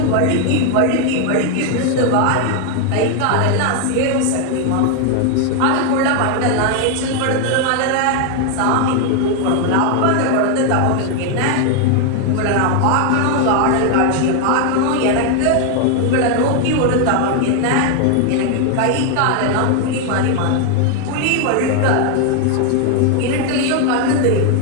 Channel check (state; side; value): different; both; correlation 0.00